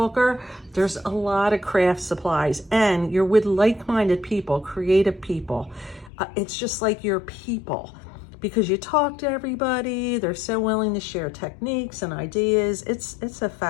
There's a lot of craft supplies and you're with like-minded people, creative people. It's just like your people. Because you talk to everybody, they're so willing to share techniques and ideas. It's a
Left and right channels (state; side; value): drops out; right; at 6.1 s